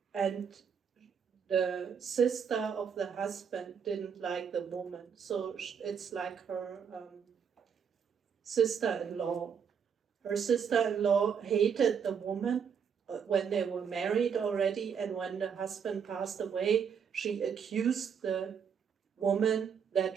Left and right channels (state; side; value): quieter; left; 7.1 dB